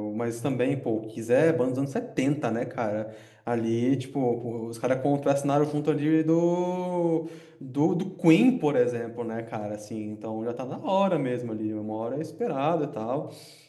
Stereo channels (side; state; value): both; identical; correlation 1.00